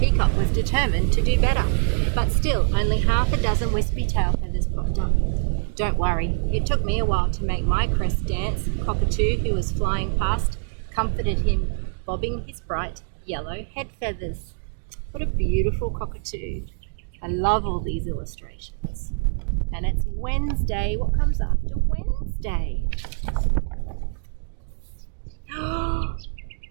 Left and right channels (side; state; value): left; silent; 62 dB below the other